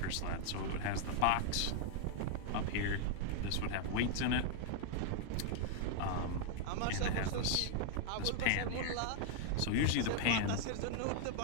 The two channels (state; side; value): different; both; correlation -0.01